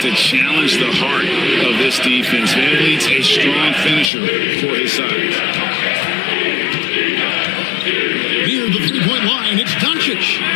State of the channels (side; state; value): right; drops out; at 4.1 s